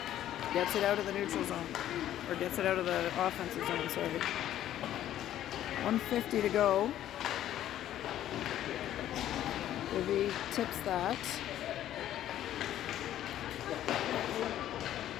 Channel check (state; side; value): quieter; right; 12.1 dB